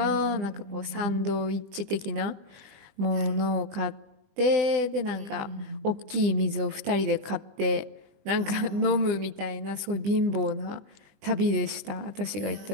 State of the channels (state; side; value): late; left; 20 ms